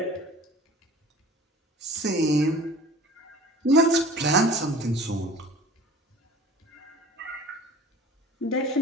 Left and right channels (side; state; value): both; normal; correlation 0.44